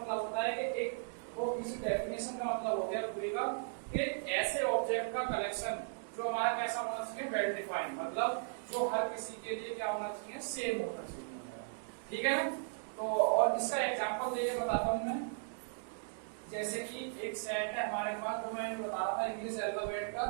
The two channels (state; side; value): silent; left; digital silence